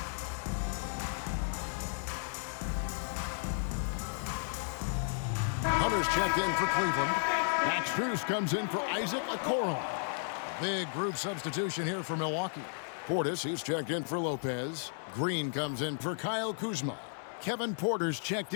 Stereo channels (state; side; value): silent; right; 55 dB below the other